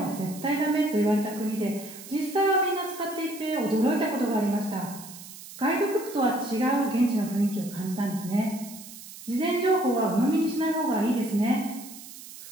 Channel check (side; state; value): right; noise; hiss, 15 dB below the sound